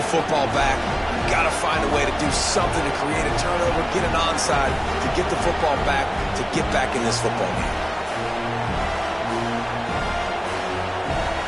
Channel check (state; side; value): identical; both; correlation 1.00